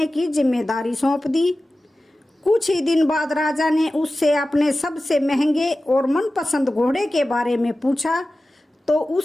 की जिम्मेदारी सौंप दी। कुछ ही दिन बाद राजा ने उससे अपने सबसे महंगे और मनपसंद घोड़े के बारे में पूछा तो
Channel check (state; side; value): normal; both; correlation 0.95